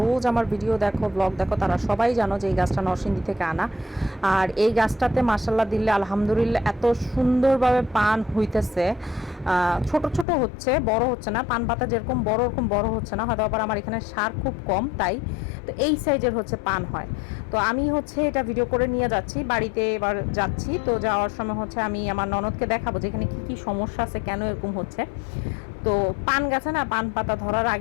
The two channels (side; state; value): right; drops out; at 10.2 s